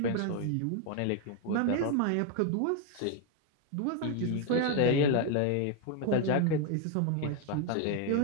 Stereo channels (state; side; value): different; both; correlation 0.01